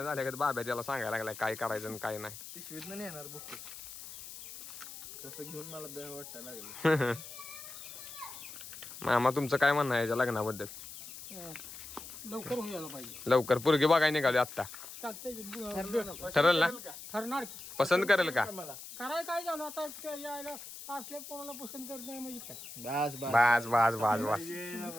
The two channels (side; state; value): left; noise; hiss, 12 dB below the sound